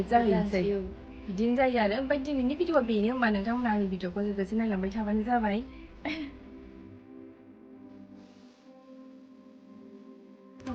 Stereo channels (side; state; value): both; identical; correlation 1.00